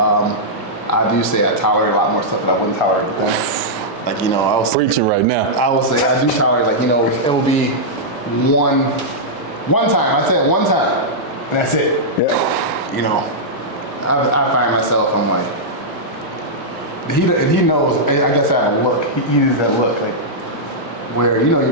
do say I tolerate a lot more stuff that I wouldn't tolerate with them. Like I was Preaching right now. I will say I do tolerate it will be one time. I said one time, and that's it. Yeah. I find myself, I'm like, he knows. I guess I have a look. He uses that look like. Where your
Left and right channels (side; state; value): both; normal; correlation -0.09